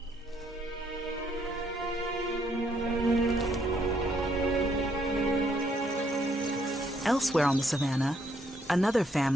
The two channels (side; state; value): both; normal; correlation 0.71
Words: Elsewhere on the savannah, another